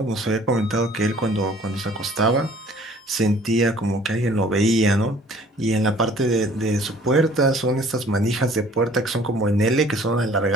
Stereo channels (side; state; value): both; normal; correlation 0.53